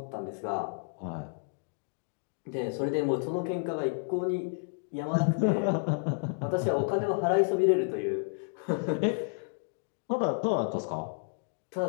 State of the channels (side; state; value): right; silent; digital silence